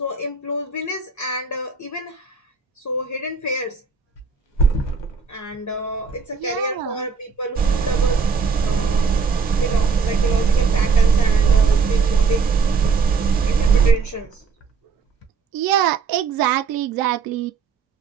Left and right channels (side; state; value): left; quieter; 5.2 dB